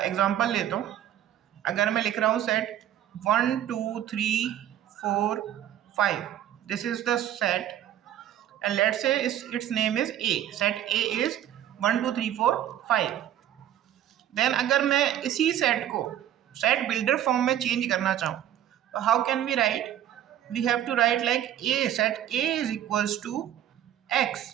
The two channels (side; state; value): left; quieter; 11.4 dB